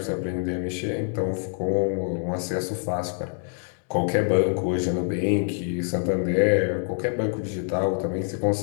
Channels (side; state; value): right; silent; 61 dB below the other